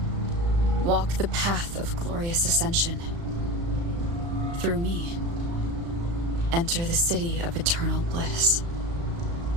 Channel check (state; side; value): late; left; 35 ms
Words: Walk the path of glorious ascension. Through me, enter the city of eternal bliss.